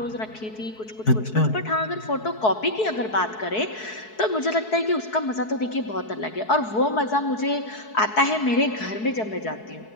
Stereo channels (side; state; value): right; late; 4.6 ms